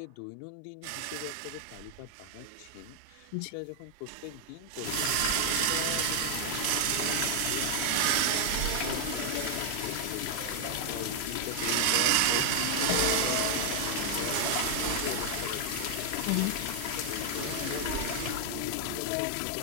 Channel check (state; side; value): different; both; correlation 0.00